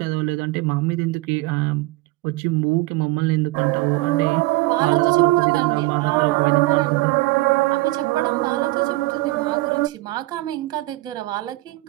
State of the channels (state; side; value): quieter; left; 19.8 dB